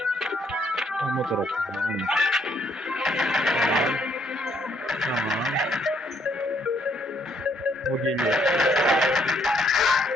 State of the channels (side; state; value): both; normal; correlation 0.69